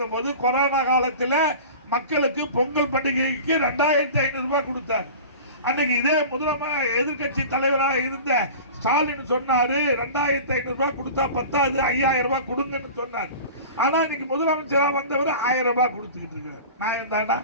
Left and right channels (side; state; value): both; inverted; correlation -0.36